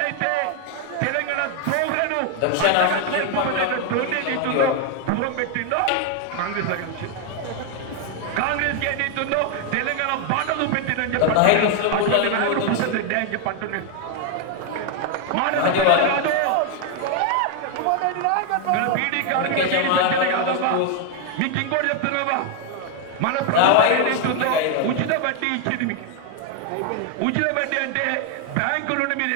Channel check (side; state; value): both; different; correlation 0.01